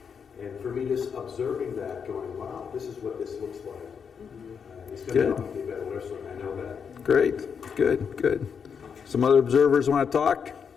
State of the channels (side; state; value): right; quieter; 6.6 dB